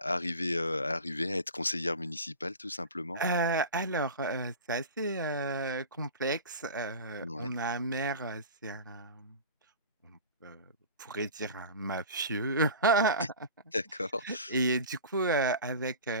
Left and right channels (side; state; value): both; inverted; correlation -0.35